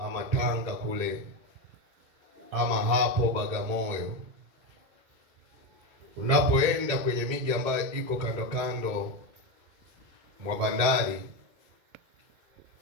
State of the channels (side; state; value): left; late; 1.8 ms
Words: ama Tanga kule ama hapo Bagamoyo. Unapoenda kwenye miji ambayo iko kando kando mwa bandari,